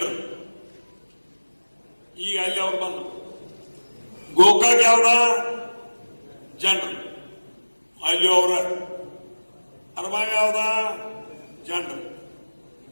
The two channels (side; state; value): both; inverted; correlation -1.00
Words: ಈಗ ಅಲ್ಲಿ ಅವ್ರು ಬಂದ್ರು. ಗೋಕಾಕ್ ಯಾವ್ದ? ಜನರು. ಅಲ್ಲಿ ಅವರ ಅರಬಾವಿ ಯಾವ್ದ? ಜನರು.